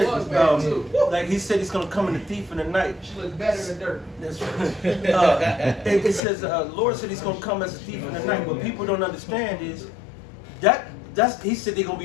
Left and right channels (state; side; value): drops out; right; at 6.2 s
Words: was bad, too. like He said He's going to come in the thief in the night. She looks better than dirt. That's right. It says, Lord said He's going to come as a thief in the night. What people don't understand is that's He said they're going